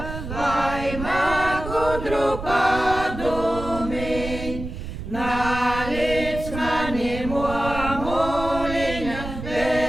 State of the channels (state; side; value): noise; right; rumble, 8 dB below the sound